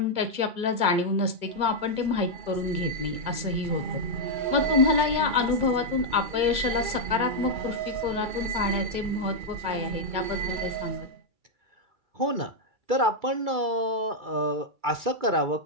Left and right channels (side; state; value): left; late; 2.2 ms